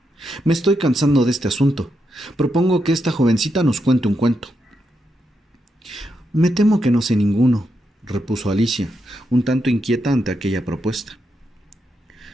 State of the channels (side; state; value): both; normal; correlation 0.83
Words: «Me estoy cansando de este asunto. Propongo que esta jovencita nos cuente un cuento». «Me temo que no sé ninguno», repuso Alicia, un tanto inquieta ante aquella propuesta.